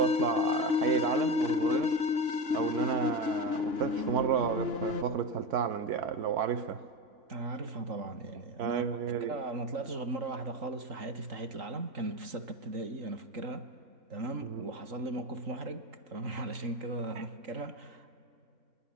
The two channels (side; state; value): left; late; 3.6 ms